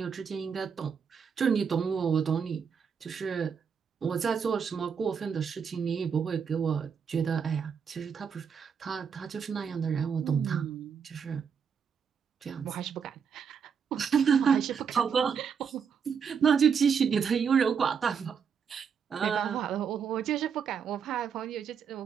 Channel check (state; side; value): quieter; left; 6.7 dB